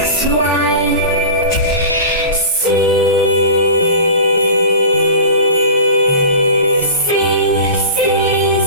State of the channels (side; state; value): both; inverted; correlation -0.35